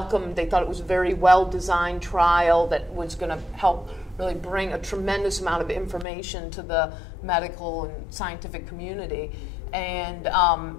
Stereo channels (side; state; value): right; drops out; at 6.1 s